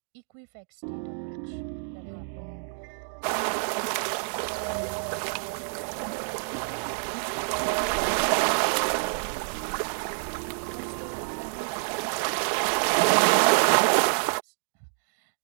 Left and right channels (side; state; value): left; silent; digital silence